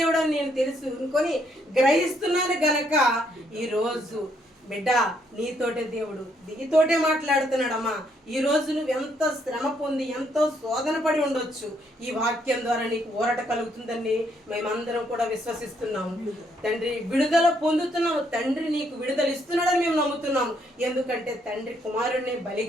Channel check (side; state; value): both; normal; correlation 0.72